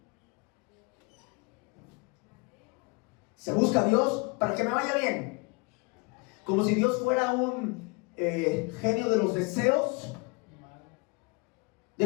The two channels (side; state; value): right; quieter; 29.7 dB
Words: Se busca a Dios para que me vaya bien. Como si Dios fuera un genio de los deseos, de